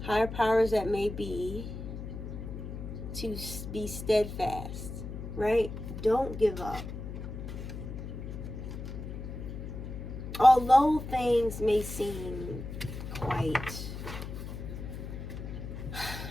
higher powers that may be, to be steadfast, right? Don't give up. Although things may seem quite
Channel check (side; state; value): left; noise; hum, 8 dB below the sound